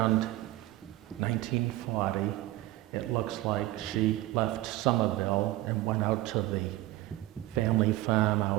1940, it looks like she left Somerville and went out to the family farm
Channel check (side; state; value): left; quieter; 17.1 dB